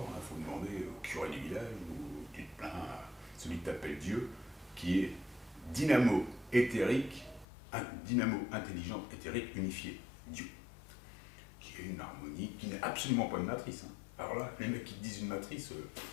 Il faut demander au curé du village, ou tu te plains à celui qui t'appelle Dieu, qui est dynamo éthérique, dynamo intelligent éthérique unifié, Dieu. Une harmonie qui n'est absolument pas une matrice. Hein. Alors là, les mecs qui te disent une matrice,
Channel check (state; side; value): drops out; right; at 7.5 s